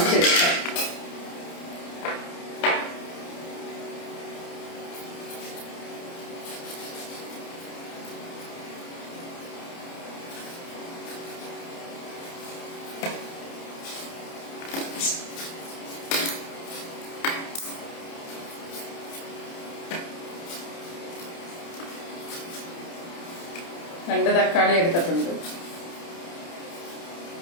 രണ്ട് തക്കാളി എടുത്തിട്ടുണ്ട്.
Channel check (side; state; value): right; late; 29 ms